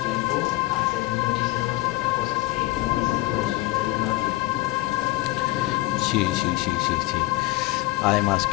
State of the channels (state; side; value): quieter; right; 19.2 dB